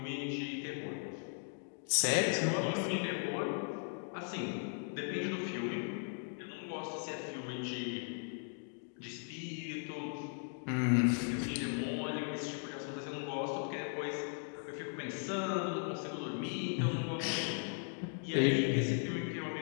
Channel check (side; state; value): right; silent; 53 dB below the other